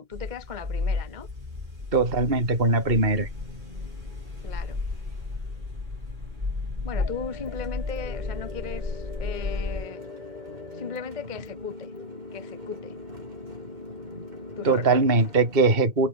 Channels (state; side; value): late; left; 2.2 ms